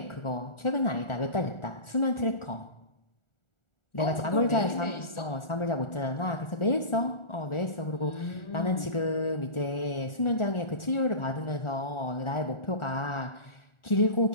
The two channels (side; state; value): right; late; 1.4 ms